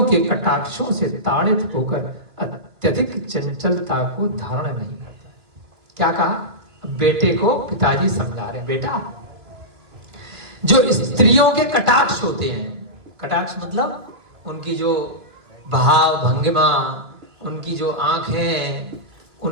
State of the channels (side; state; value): left; late; 2.4 ms